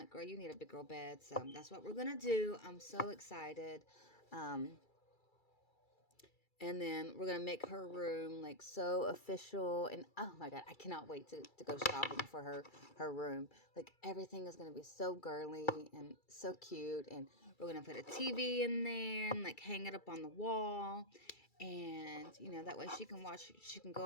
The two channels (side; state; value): right; late; 2.3 ms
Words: girl, you need a big girl bed. So that's what we're gonna do. I'm so excited. And then we're going to make her room like so official. And oh my God, I cannot wait to go shopping for her room. Like everything is going to be so girly and so cute. And we're going to put a TV in there and like hang it up on the wall. And, that way she can